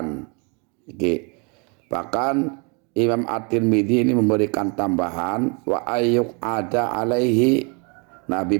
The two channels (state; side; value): quieter; left; 33.5 dB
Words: Bahkan Imam At-Tirmidzi ini memberikan tambahan wa ayuk ada alaihi, Nabi